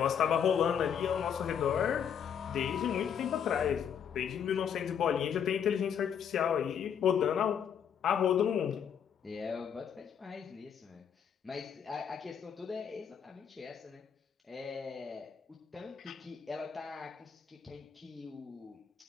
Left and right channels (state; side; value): quieter; right; 8.0 dB